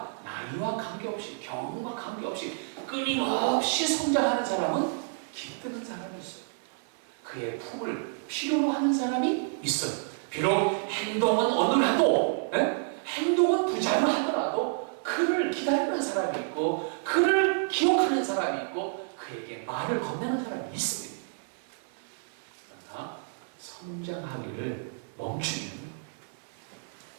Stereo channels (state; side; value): silent; left; digital silence